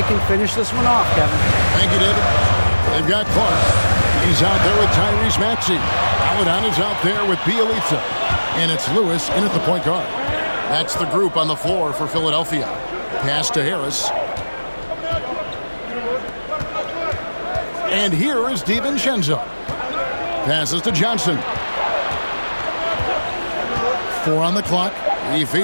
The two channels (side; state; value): both; inverted; correlation -1.00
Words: can finish this one off, Kevin. Thank you, David. They've got Clark. He's out there with Tyrese Maxey. Paladon is out there with Bielitsa. And it's Lewis in at the point guard. That's the group on the floor for Philadelphia. Pass to Harris. And here is DiVincenzo. Passes to Johnson. 4 on the clock. He